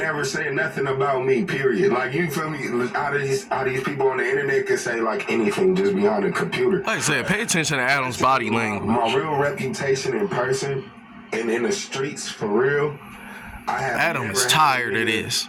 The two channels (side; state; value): both; identical; correlation 1.00